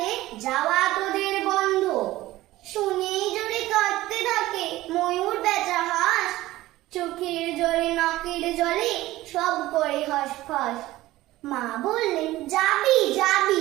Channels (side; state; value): left; quieter; 16.9 dB